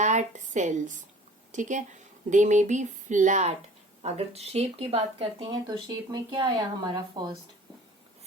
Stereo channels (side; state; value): both; normal; correlation 0.47